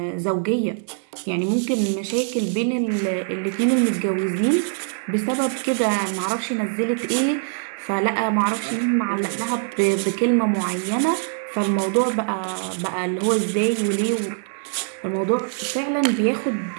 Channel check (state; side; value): silent; left; digital silence